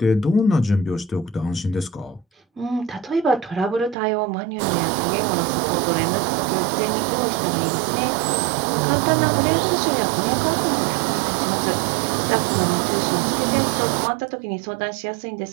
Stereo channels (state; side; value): drops out; left; at 4.0 s